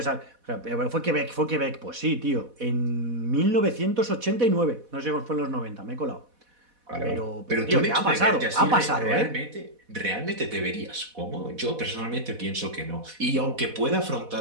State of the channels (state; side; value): late; left; 4.1 ms